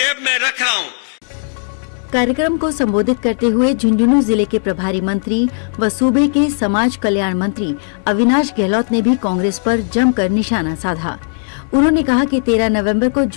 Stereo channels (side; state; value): right; silent; 69 dB below the other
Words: में रख रहा हूं। कार्यक्रम को संबोधित करते हुए झुंझुनू जिले के प्रभारी मंत्री व सूबे के समाज कल्याण मंत्री अविनाश गहलोत ने भी कांग्रेस पर जमकर निशाना साधा। उन्होंने कहा कि 13 नवंबर को